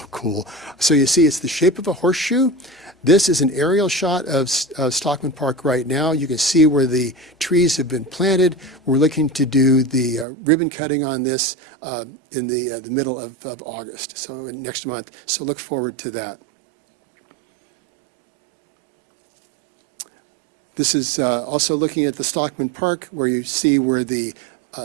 cool. So you see, it's the shape of a horseshoe. This is an aerial shot of Stockman Park right now. You can see where the trees have been planted. We're looking to do the ribbon cutting on this in the middle of August, so next month. So look forward to that. This is also looking at the Stockman Park, where you see where the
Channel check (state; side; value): drops out; left; at 10.2 s